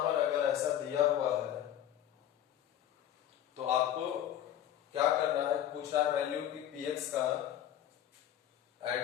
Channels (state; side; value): quieter; right; 11.2 dB